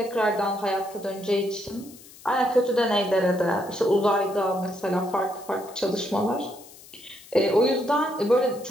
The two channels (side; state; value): left; noise; hiss, 21 dB below the sound